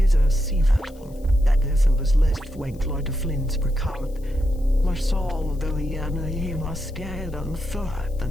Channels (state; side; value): noise; left; hiss, 28 dB below the sound